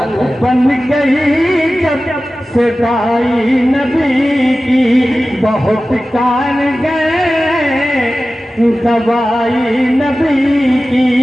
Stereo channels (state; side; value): normal; both; correlation 0.95